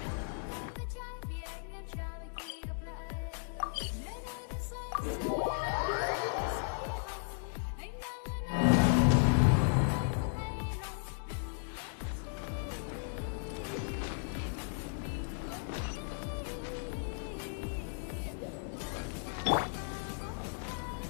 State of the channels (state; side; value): silent; right; digital silence